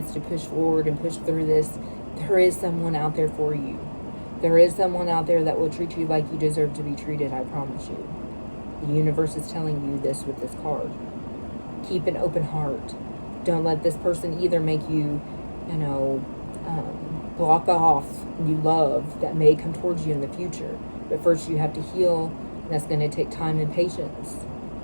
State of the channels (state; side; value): inverted; both; correlation -1.00